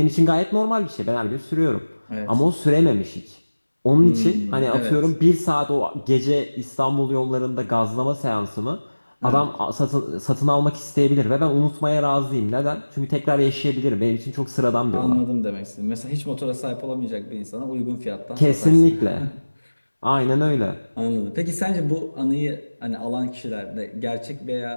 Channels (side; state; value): both; inverted; correlation -1.00